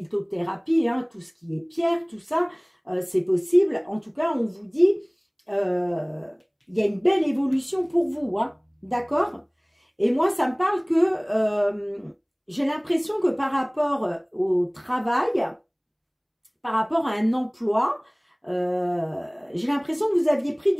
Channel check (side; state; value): both; identical; correlation 1.00